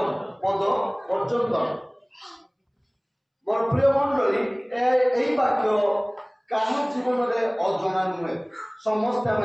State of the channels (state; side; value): identical; both; correlation 1.00